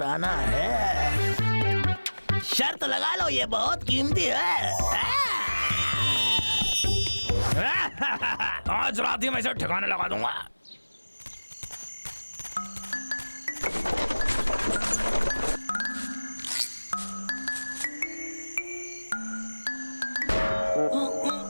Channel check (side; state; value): both; inverted; correlation -1.00